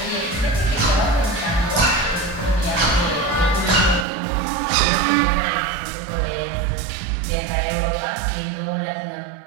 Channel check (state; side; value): drops out; left; at 4.0 s